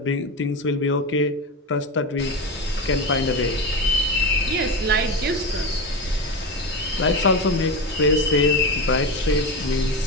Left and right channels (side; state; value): both; normal; correlation 0.20